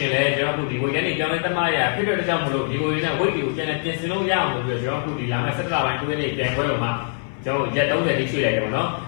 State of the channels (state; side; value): silent; right; 59 dB below the other